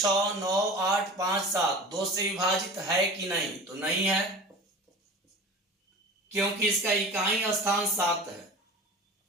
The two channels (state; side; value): normal; both; correlation 0.36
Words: 9, 8, 5, 7 2 से विभाजित है कि नहीं, तो नहीं है, क्योंकि इसका इकाई स्थान 7 है।